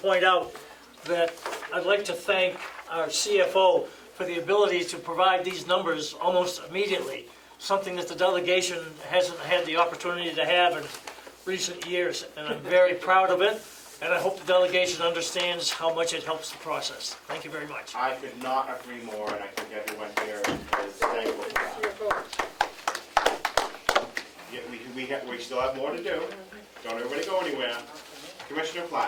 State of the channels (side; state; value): both; identical; correlation 1.00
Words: out that I'd like to thank our CFO for the ability to provide these numbers almost immediately, something that the delegation hasn't had the opportunity to have in recent years, and I'm very proud of it, and I hope the delegation understands how much it helps the process. Thank you very much. I could not agree more, and I think everyone here is thankful for that. Yeah, we still have more to do. Don't everybody go anywhere. Commissioner